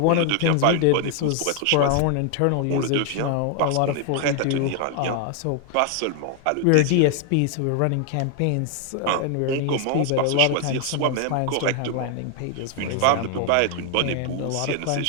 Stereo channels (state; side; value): different; both; correlation 0.00